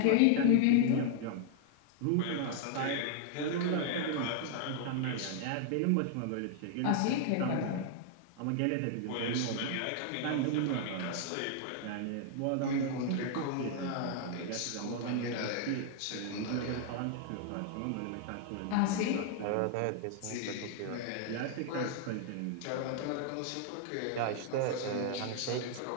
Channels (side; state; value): both; different; correlation 0.00